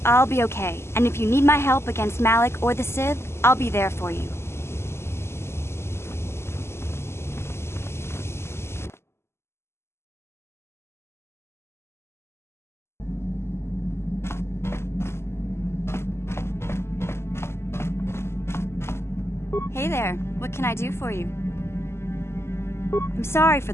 I'll be okay. And if you need my help against Malik or the Sith, I'll be there for you. Hey there, what can I do for you? I'm sorry for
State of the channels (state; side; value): late; right; 0.12 ms